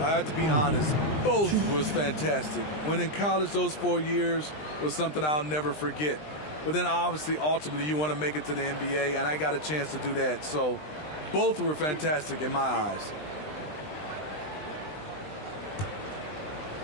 I have to be honest, both was fantastic. When in college, those 4 years was something I'll never forget. But then obviously, ultimately, you want to make it to the NBA, and I got a chance to do that. So both were fantastic in my eyes.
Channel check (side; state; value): right; late; 20 ms